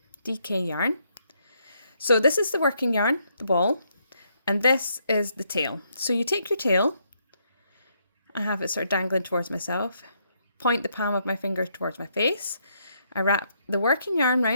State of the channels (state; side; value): inverted; both; correlation -0.74